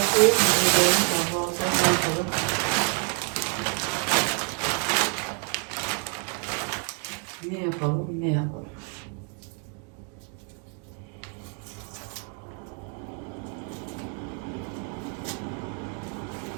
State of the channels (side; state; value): left; quieter; 38.8 dB